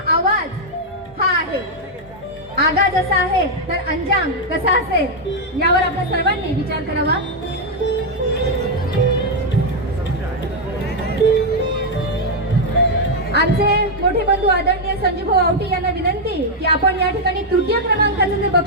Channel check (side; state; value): both; normal; correlation 0.00